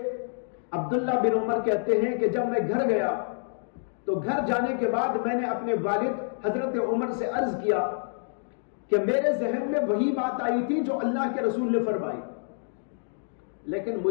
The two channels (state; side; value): silent; right; digital silence